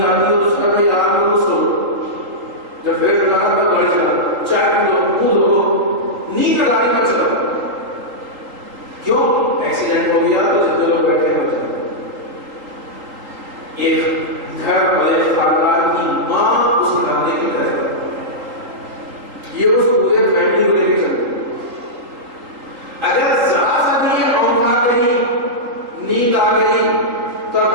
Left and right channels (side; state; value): left; late; 3.8 ms